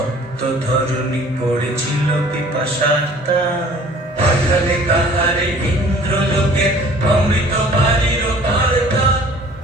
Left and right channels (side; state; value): both; normal; correlation 0.51